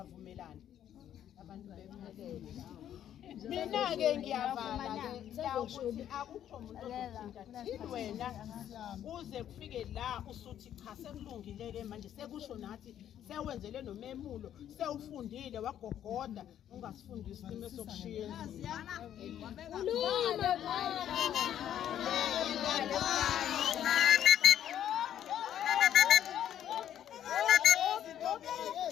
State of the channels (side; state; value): right; quieter; 10.6 dB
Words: abantu bephelele mina ke ngiyavala ke ukuthi akukho umuntu ozothinta thini wena uze kufike la usuthi cha sekulungile ke manje sekusho nathi sewenzele nomemulo sewufundile wagogoda ungasifundisi isimo sokushiya